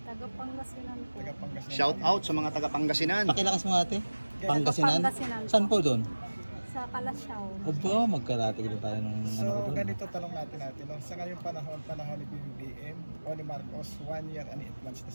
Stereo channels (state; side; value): inverted; both; correlation -1.00